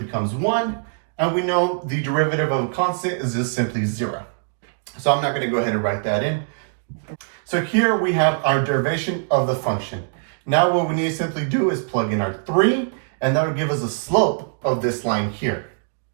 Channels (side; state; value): left; silent; digital silence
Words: 1. And we know the derivative of a constant is just simply 0. So I'm not going to go ahead and write that in. So here we have our derivation of the function. Now what we need to simply do is plug in our 3, and that will give us a slope of this line here.